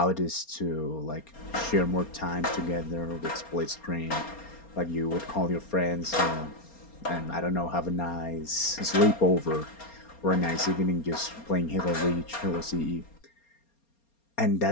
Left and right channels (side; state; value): right; late; 4.3 ms